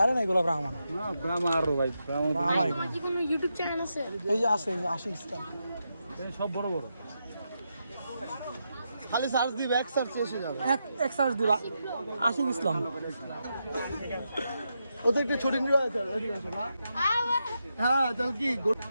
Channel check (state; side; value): inverted; both; correlation -0.85